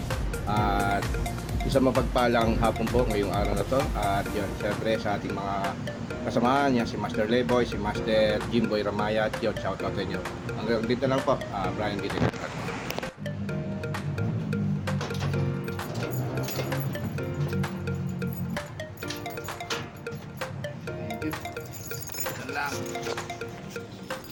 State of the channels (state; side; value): identical; both; correlation 1.00